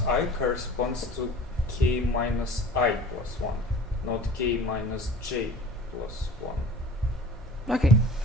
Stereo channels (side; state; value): both; normal; correlation 0.43